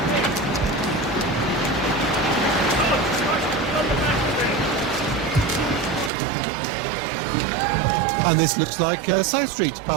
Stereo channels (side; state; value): left; drops out; at 6.1 s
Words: And this looks like South Street